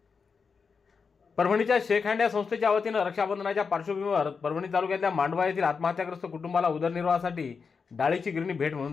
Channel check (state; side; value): quieter; right; 5.4 dB